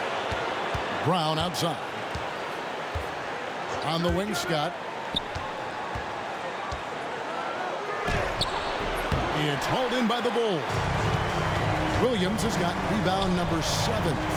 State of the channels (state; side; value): identical; both; correlation 1.00